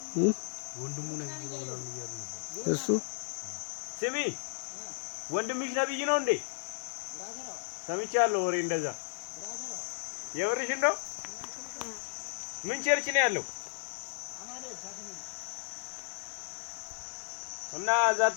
ወንድሙ ነብይ ነው ምናምን እያሉ ነበር እሱ ስሚ ወንድምሽ ነብይ ነው እንዴ ሰምቻለሁ ወሬ እንደዛ የወርሽን ነው ምን ቸርች ነው ያለው እና እዛ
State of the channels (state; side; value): silent; right; 55 dB below the other